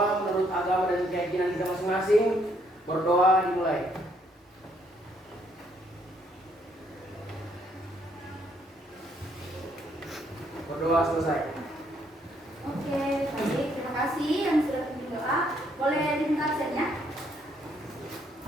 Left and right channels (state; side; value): normal; both; correlation 0.70